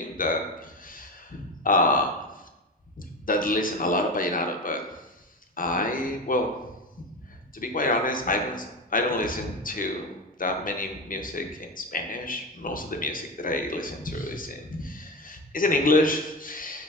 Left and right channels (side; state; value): both; normal; correlation 0.22